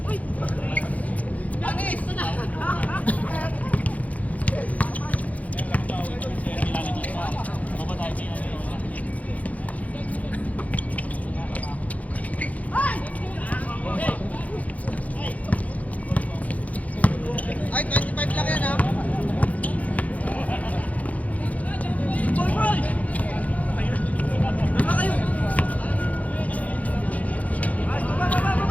Ay, 25 lang yan ha.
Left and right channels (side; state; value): right; late; 0.071 ms